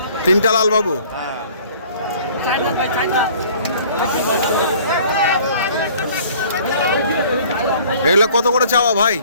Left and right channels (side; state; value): both; inverted; correlation -0.52